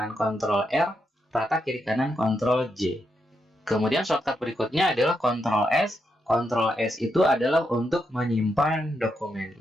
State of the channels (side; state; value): both; normal; correlation 0.82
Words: control R, rata kiri kanan control J. Kemudian shortcut berikutnya adalah control S. Control S itu adalah untuk menyimpan dokumen.